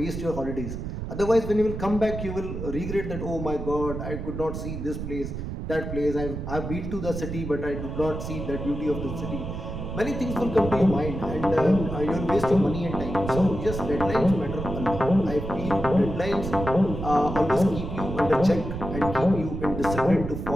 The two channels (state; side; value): noise; right; rumble, 6 dB below the sound